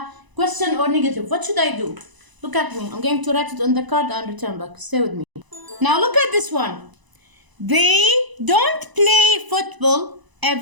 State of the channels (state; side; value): late; left; 1.0 ms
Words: question or negative, what should I do? Look at me. I'm going to write it on the card and return back. Stay with me. Now look at this one. They don't play football